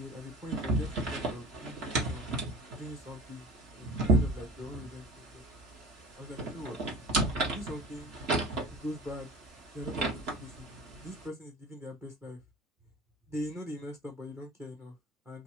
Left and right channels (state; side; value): normal; both; correlation 0.39